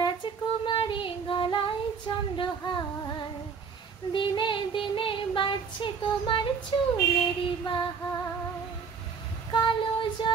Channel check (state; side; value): quieter; left; 5.9 dB